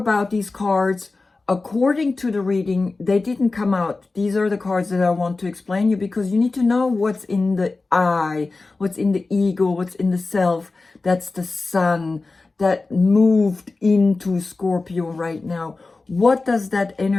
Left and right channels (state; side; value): quieter; right; 3.6 dB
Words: these cards according to the reading. They didn't come out. These are the cards that I want to explain you, because you need to know what's in the I, what's in the ego, what's in the self. That's the sun that moved into Scorpio right now. What does that